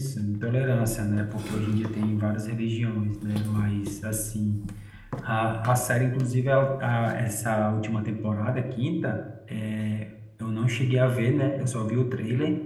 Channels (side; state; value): both; identical; correlation 1.00